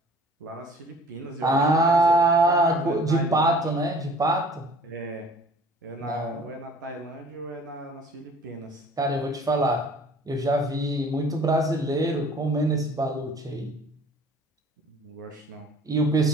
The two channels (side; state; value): both; normal; correlation 0.50